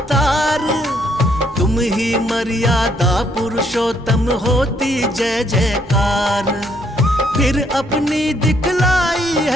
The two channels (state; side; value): normal; both; correlation 0.70